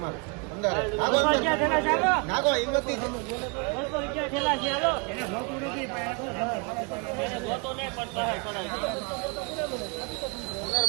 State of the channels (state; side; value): quieter; left; 32.4 dB